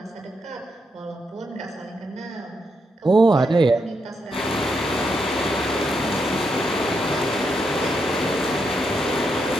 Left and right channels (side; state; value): both; normal; correlation 0.81